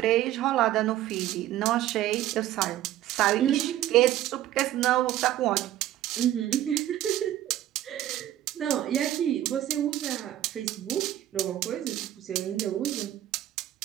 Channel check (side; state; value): left; quieter; 13.1 dB